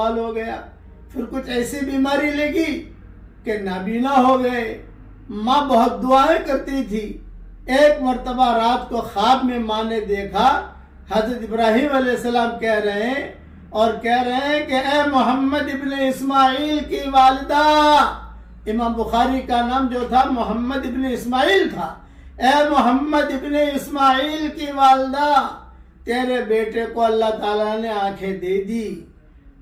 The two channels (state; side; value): identical; both; correlation 1.00